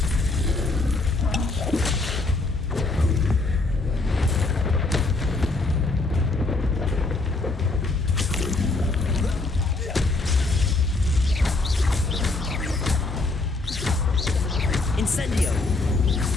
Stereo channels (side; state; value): right; quieter; 3.3 dB